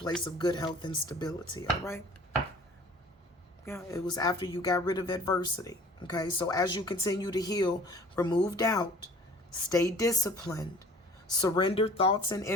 of good health and stability, all right? Yeah, it was after you got rid of adversity, okay? So as you continue to heal, remove doubt, stay disciplined, surrender thoughts and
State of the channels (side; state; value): both; normal; correlation 0.48